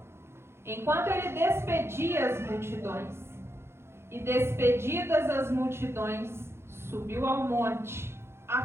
enquanto ele despedia as multidões. E despedidas as multidões, subiu ao monte,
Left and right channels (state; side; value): late; left; 0.12 ms